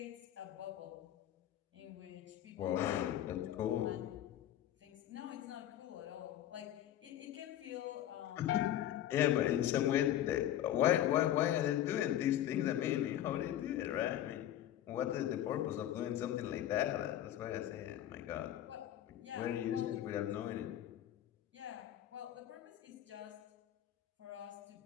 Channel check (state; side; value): quieter; right; 12.1 dB